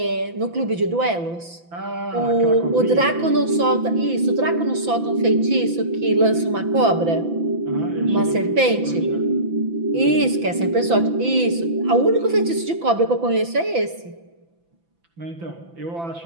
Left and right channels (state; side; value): late; left; 5.9 ms